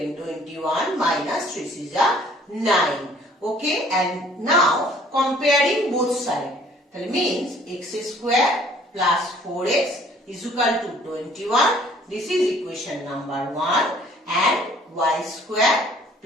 21 minus 3 is 9. Okay, and now comparing both sides. That means x square plus 4x is equal to 21. This is equation number 1. And y square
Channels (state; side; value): normal; both; correlation 0.57